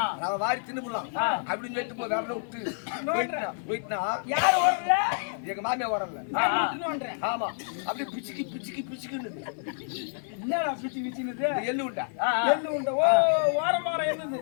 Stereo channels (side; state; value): right; silent; 59 dB below the other